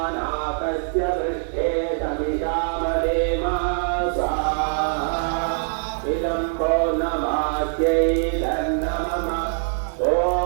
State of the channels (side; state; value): left; silent; digital silence